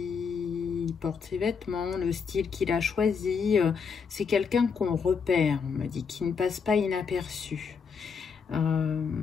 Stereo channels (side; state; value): right; quieter; 5.9 dB